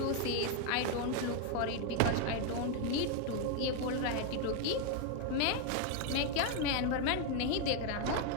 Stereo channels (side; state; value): both; different; correlation 0.01